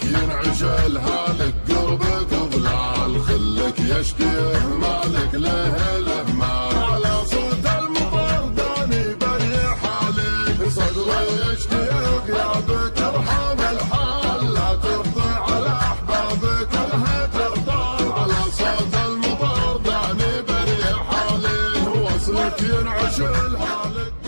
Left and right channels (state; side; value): inverted; both; correlation -1.00